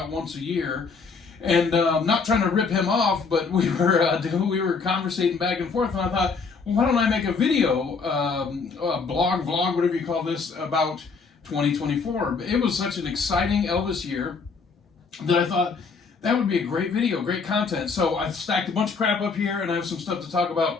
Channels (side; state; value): right; quieter; 4.9 dB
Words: once a year. And I'm not trying to rip him off, but we were conversating back and forth, and I thought, well, why don't I make a video, a blog, vlog, whatever you call this, about 2024. It was such an exciting Elvis year that I thought that would be a great video, great content. So I've stacked a bunch of crap up here, and I have some stuff to talk